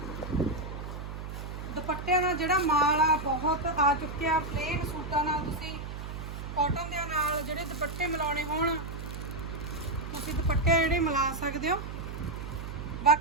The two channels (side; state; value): right; noise; hum, 8 dB below the sound